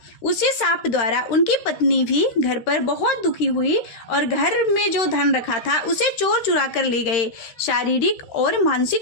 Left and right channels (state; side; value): late; right; 13 ms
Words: उसी साप द्वारा उनकी पत्नी भी घर पर बहुत दुखी हुई और घर में जो धन रखा था उसे चोर चुरा कर ले गए। शारीरिक और